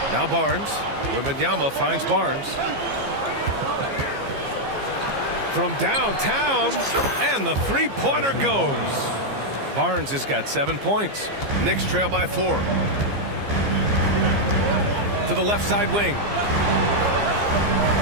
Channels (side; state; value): left; late; 15 ms